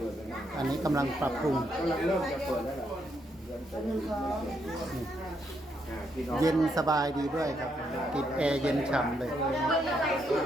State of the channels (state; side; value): normal; both; correlation 0.77